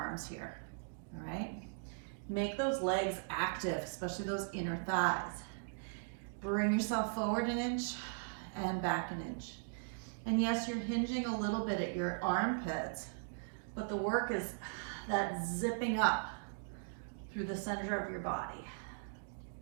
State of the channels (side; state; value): left; silent; digital silence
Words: here. All right? Make those legs active, especially those inner thighs. Bring yourself forward an inch and back an inch. And yes, you're hinging a little bit at your armpits, but the work is that zipping up through the center of your body.